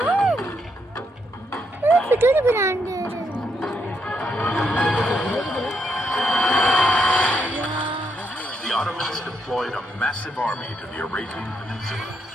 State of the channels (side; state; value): both; normal; correlation 0.78